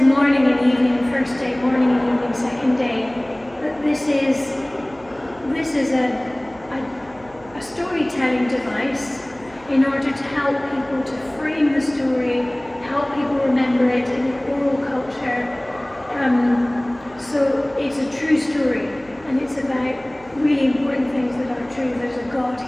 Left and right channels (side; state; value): right; noise; hum, 25 dB below the sound